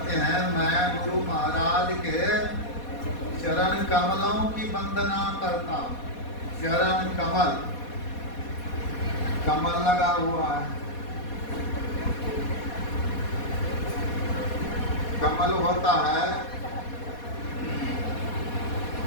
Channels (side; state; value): right; late; 4.2 ms